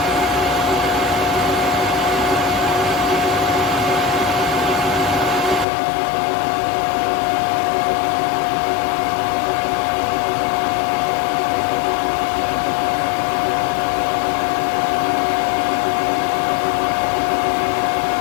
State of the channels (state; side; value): drops out; right; at 5.7 s